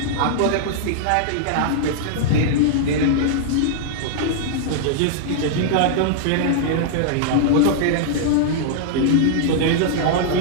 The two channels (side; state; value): both; different; correlation -0.01